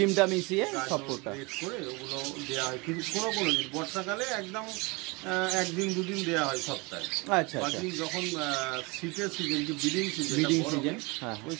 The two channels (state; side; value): quieter; left; 27.0 dB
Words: মিশিয়ে সব ফুডটা করে ওগুলো দেওয়া হয়। কিন্তু কোনো দিন বর্ষাকালে একদম 1-2 দিন দেওয়া হয় সপ্তাহে। আচ্ছা, বাকি যখন শীতের সিজন, যে ব্রিডিং সিজন, ওই